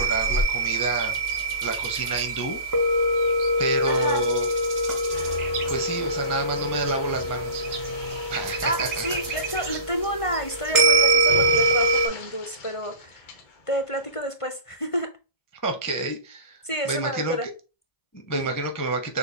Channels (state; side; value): late; right; 1.5 ms